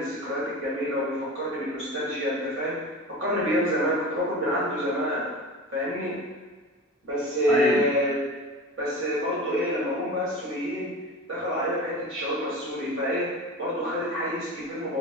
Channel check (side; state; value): both; normal; correlation 0.32